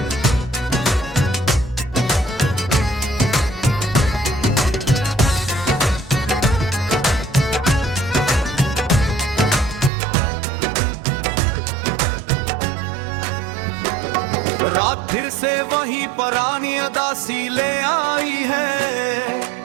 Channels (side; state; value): left; drops out; at 9.9 s